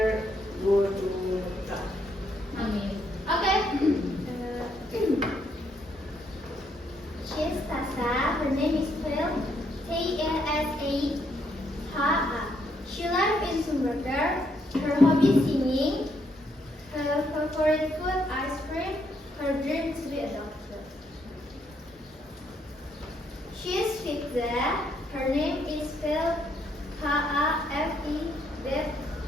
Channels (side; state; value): both; normal; correlation 0.74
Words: go to Mekah. Amin. Okay. She's Tasa. Her name is spelled T-A-S-A-H-A. She lives in Sumberger. Her hobby is singing. Her favorite food ice cream. Her dream to be a doctor. She is Fitza. Her name is spelled Hafidza.